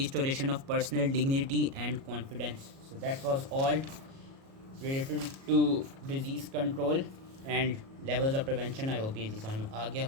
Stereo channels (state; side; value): late; left; 37 ms